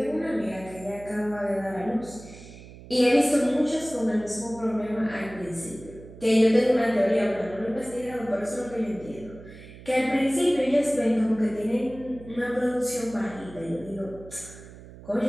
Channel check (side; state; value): right; noise; hum, 17 dB below the sound